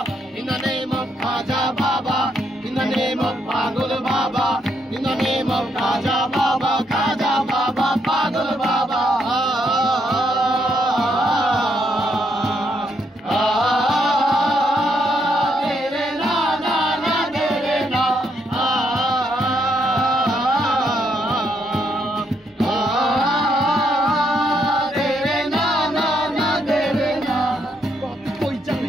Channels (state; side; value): normal; both; correlation 0.75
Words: in the name of Khaja Baba, in the name of Pagul Baba, in the name of Khaja Baba, Pagul Baba.